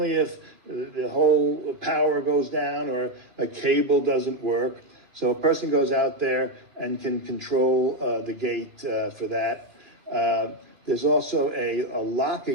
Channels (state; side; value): late; left; 2.4 ms